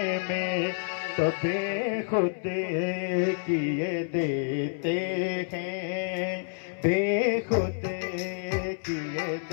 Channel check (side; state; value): right; silent; 59 dB below the other